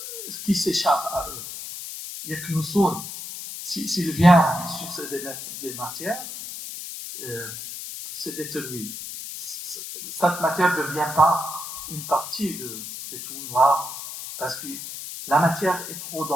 qui s'échappe à eux. Il n'y a que nous sommes. S'il vient sur des matières, c'est détruit. Cette matière ne devient pas une partie des trous noirs parce que la matière est trop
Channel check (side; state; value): left; noise; hiss, 9 dB below the sound